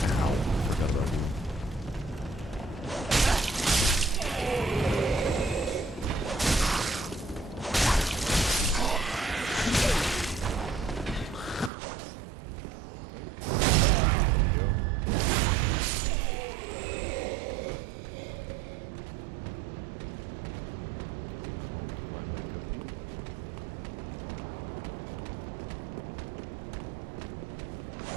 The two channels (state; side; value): drops out; left; at 11.7 s